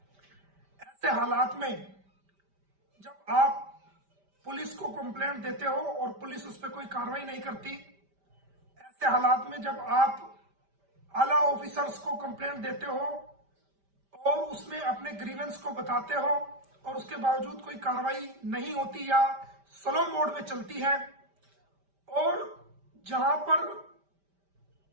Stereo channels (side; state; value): left; late; 5.1 ms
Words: ऐसे हालात में जब आप पुलिस को कंप्लेंट देते हो और पुलिस उस पर कोई कार्रवाई नहीं करती, ऐसे हालात में जब आप आला ऑफिसर्स को कंप्लेंट देते हो और उसमें अपने ग्रीवेंस को बताते हो और उसके बावजूद कोई कार्रवाई नहीं होती या स्लो मोड में चलती है, और जहां पर